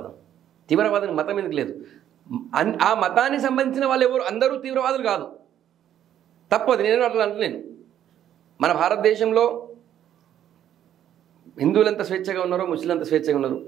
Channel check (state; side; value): quieter; left; 10.7 dB